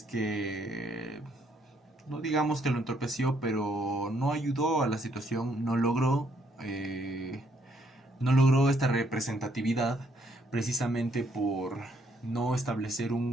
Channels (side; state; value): both; normal; correlation 0.70